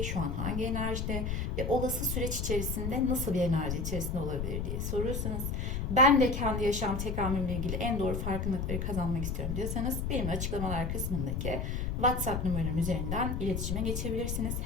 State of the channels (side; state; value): left; noise; rumble, 2 dB below the sound